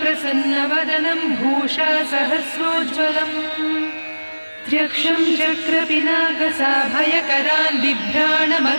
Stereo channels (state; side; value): inverted; both; correlation -1.00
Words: भूषा सहस्रोज्ज्वलम् त्र्यक्षं चक्रपिनाकसाभयकरान्